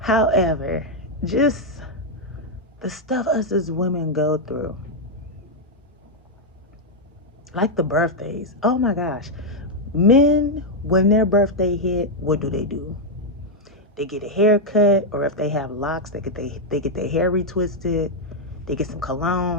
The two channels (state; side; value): normal; both; correlation -0.01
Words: just the stuff us as women go through, like the birthdays. Oh my gosh. Men, when their birthday hit, what do? They get a haircut, or if they have locks, they get their hair retwisted. They get some